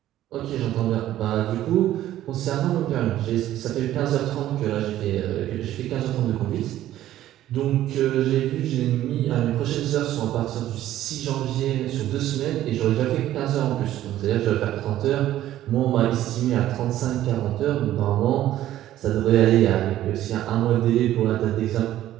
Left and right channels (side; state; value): left; quieter; 13.3 dB